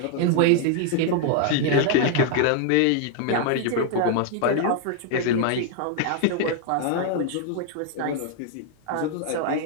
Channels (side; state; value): both; different; correlation 0.00